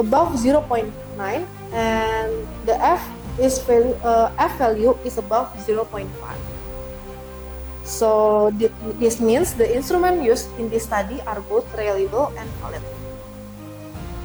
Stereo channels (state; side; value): identical; both; correlation 1.00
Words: 0.9, and the F value is above 0.5. So this means the instruments used in this study are both reliable and valid.